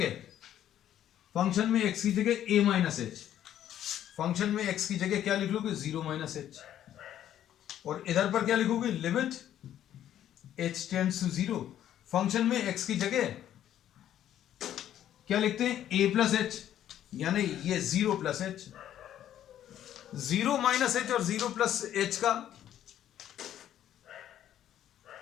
फंक्शन में x की जगह a माइनस एच, फंक्शन में x की जगह क्या लिख लोगे 0 माइनस एच, और इधर पर क्या लिखोगे, limit h tends to 0, function में x की जगह क्या लिखते हैं a प्लस एच, यानी ये 0 प्लस एच, 0 माइनस एच और 0 प्लस एच का,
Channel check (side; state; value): right; quieter; 11.2 dB